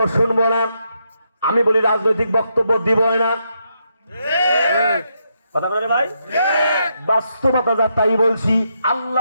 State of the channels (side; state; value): both; inverted; correlation -0.80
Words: শুনবো না। আমি বলি, রাজনৈতিক বক্তব্য দিব না। কথা বলেন ভাই, বাস্তবতা যা তাই বলছি।